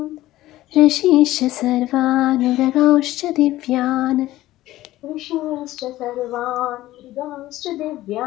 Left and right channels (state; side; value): quieter; right; 15.8 dB